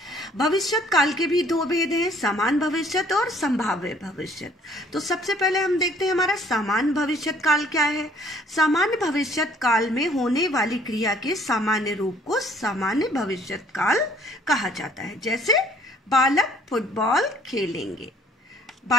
भविष्य काल के भी 2 भेद हैं, समान भविष्य और संभाव्य भविष्य। तो सबसे पहले हम देखते हैं हमारा सामान्य भविष्य काल क्या है। सामान्य भविष्य काल में होने वाली क्रिया के सामान्य रूप को सामान्य भविष्य काल कहा जाता है। जैसे बालक फुटबॉल खेलेंगे,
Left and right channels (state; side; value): normal; both; correlation 0.59